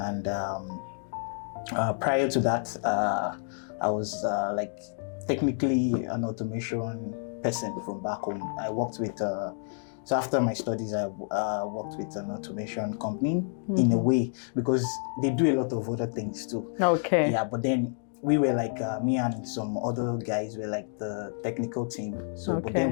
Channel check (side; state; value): right; silent; digital silence